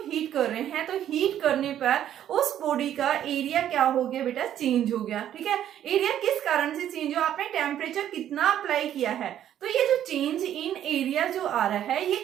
कर रहे हैं तो हीट करने पर उस बॉडी का एरिया क्या हो गया बेटा? चेंज हो गया, ठीक है। एरिया किस कारण से चेंज हुआ? आपने टेम्परेचर कितना अप्लाई किया है, तो ये जो चेंज इन एरिया जो आ रहा है ये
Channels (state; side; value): quieter; left; 10.9 dB